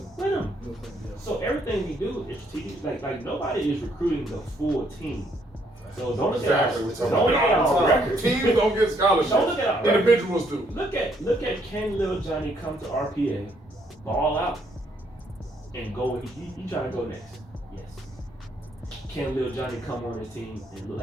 With him. So everything we do is strategic. Like nobody is recruiting the full team. So don't look at our record. Teams don't get scholarships. Don't look at our record. Individuals do. Look at can Lil Johnny come to RPA, ball out, and go? He trying to go next. Yes. Can Lil Johnny come on his team and look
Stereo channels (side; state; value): both; normal; correlation 0.70